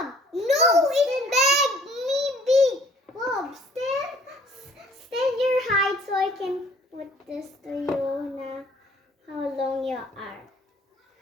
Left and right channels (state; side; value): normal; both; correlation 0.56